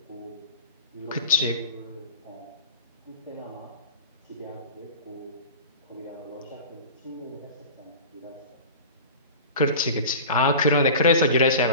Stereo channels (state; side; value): inverted; both; correlation -0.36